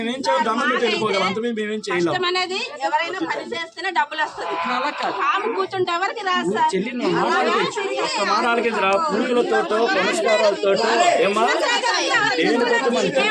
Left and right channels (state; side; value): identical; both; correlation 1.00